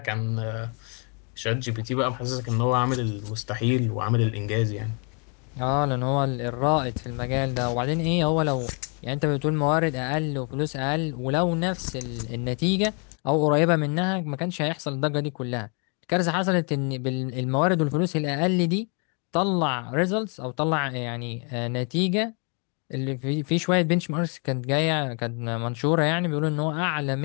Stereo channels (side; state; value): right; quieter; 37.5 dB